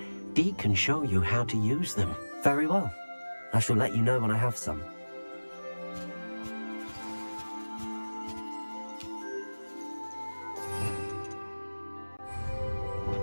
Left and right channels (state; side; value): inverted; both; correlation -1.00